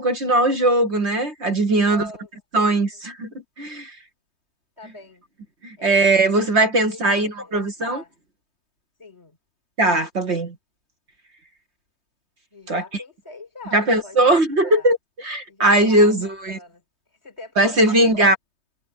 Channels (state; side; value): late; left; 3.2 ms